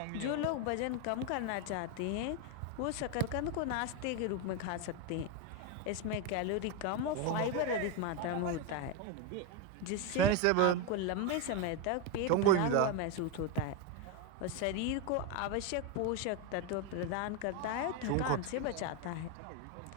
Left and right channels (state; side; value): different; both; correlation 0.02